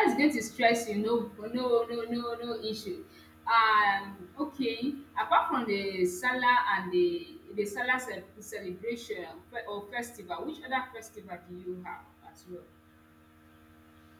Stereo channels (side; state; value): both; identical; correlation 1.00